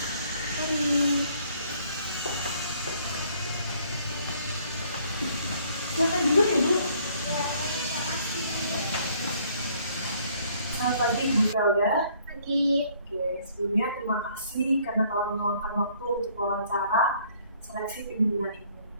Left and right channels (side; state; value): both; inverted; correlation -0.62